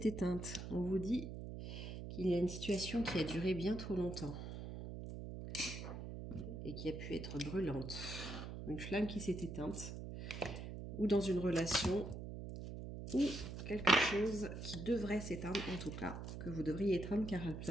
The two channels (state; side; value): noise; right; hum, 7 dB below the sound